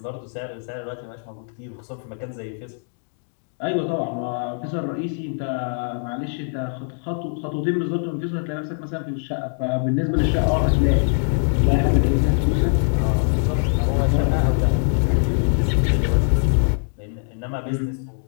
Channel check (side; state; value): right; silent; 62 dB below the other